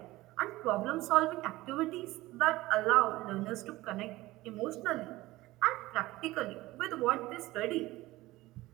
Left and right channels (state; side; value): quieter; left; 18.4 dB